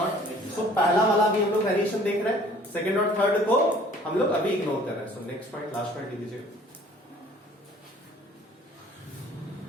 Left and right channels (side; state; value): both; normal; correlation 0.53